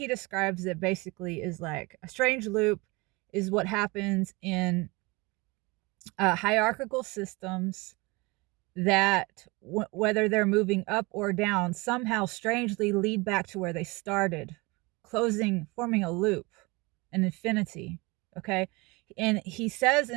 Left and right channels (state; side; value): quieter; left; 25.4 dB